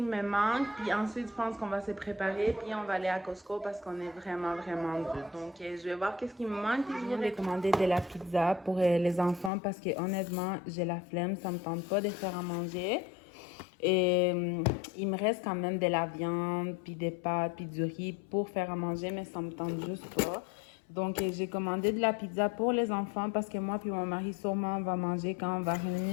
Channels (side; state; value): right; drops out; at 9.5 s